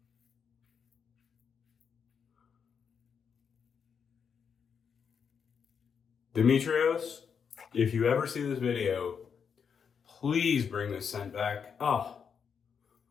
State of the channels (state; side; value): quieter; right; 6.8 dB